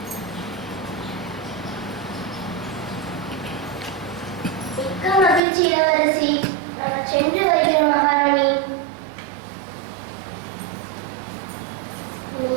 மிக்க மகிழ்ச்சி இளவரசி. நாங்கள் சென்று வருகிறோம் மகாராணி.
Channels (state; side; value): drops out; left; at 5.4 s